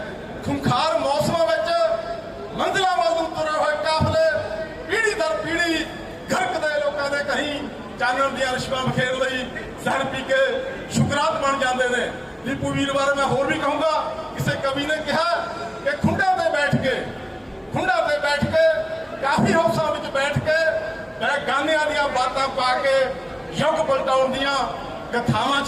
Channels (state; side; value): identical; both; correlation 1.00